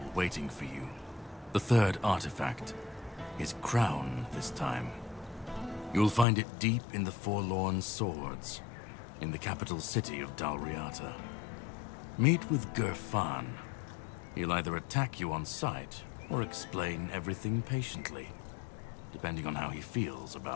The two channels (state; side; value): drops out; right; at 6.2 s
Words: waiting for you. The third artifact. His crown, this time. You'll find it deep in the Forlorn Swords, in the capital city of Dalriata. Meet with Gerfan. He'll either attack you on sight, or explain everything patiently, depending on how he feels